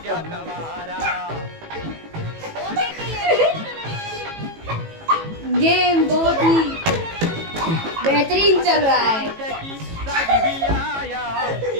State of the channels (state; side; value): late; left; 18 ms